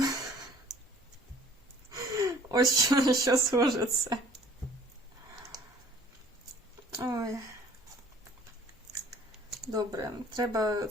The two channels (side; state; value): both; normal; correlation 0.54